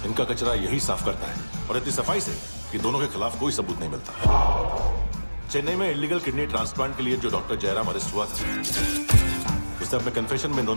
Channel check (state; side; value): inverted; both; correlation -1.00